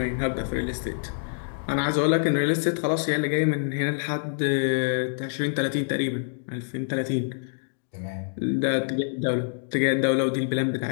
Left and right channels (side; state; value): right; silent; digital silence